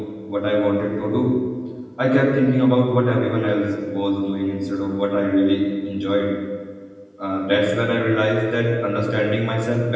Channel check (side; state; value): both; identical; correlation 1.00